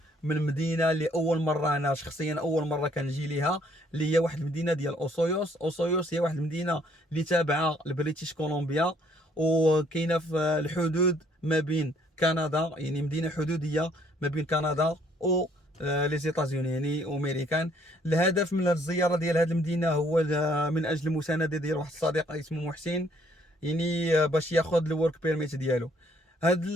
من مدينه اللي اول مره انا شخصيا اول مره كنجي ليها، اللي هي واحد المدينه ديال اوسويوس. اوسويوس هي واحد المدينه اللي تابعه لبريتيش كولومبيا، وكاينه في الحدود ما بين كندا، يعني مدينه حدوديه ما بين كندا و لي زيتازوني يعني امريكان. الهدف من الزياره ديال هذه المدينه هو من اجل المسانده ديال واحد الصديق اسمه محسن، يعني باش ياخذ الورك بيرميت ديالو. وهاد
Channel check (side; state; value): both; normal; correlation 0.64